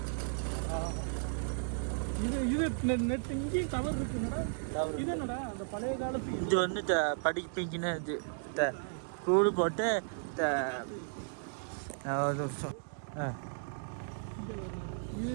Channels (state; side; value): silent; left; digital silence